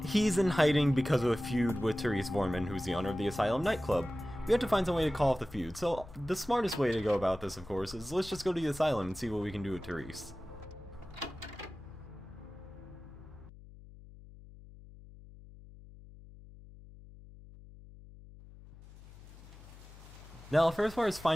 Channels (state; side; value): noise; left; hum, 19 dB below the sound